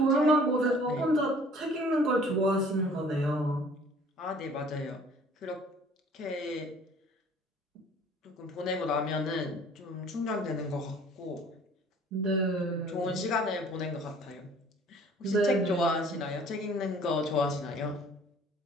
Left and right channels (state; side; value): normal; both; correlation 0.53